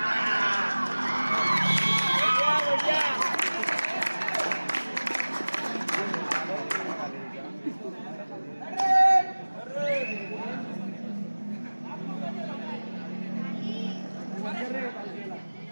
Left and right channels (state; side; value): inverted; both; correlation -1.00